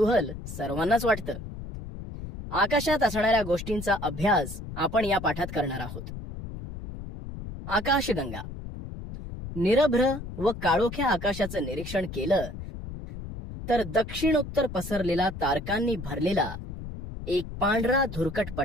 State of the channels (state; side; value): noise; left; rumble, 9 dB below the sound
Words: सर्वांनाच वाटतं. आकाशात असणाऱ्या गोष्टींचा अभ्यास आपण या पाठात करणार आहोत. आकाशगंगा. निरभ्र व काळोख्या आकाशाचं निरीक्षण केलं तर दक्षिणोत्तर पसरलेला तारकांनी भरलेला एक पांढरा धुरकट